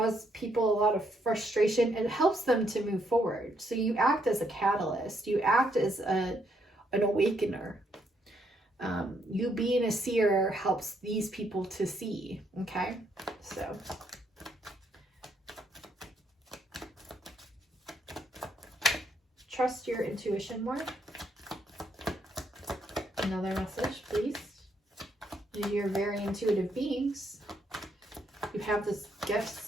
people a lot of frustration, it helps them to move forward. So you act as a catalyst. You act as an awakener. You being a seer helps these people to see. Okay. So trust your intuition more? Another message, please. You're very intuitive beings. You have this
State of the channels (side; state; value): both; normal; correlation 0.73